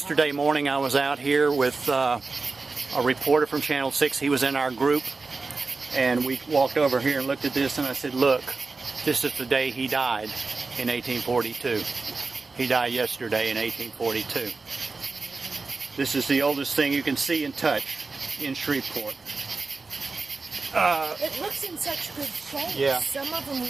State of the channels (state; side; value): quieter; left; 4.0 dB